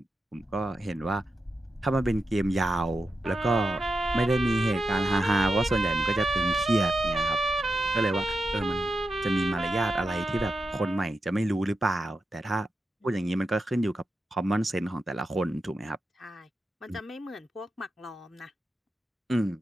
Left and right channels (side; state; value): both; normal; correlation 0.88